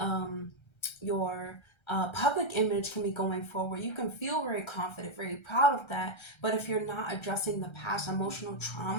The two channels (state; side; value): late; right; 1.3 ms